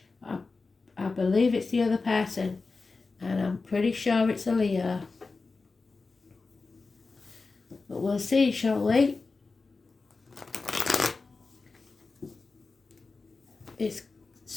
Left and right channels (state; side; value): quieter; right; 4.0 dB